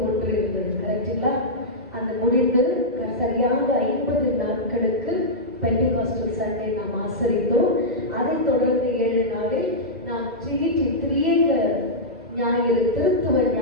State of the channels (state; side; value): normal; both; correlation -0.10